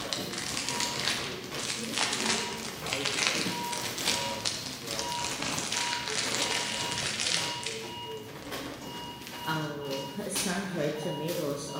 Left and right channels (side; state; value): both; identical; correlation 1.00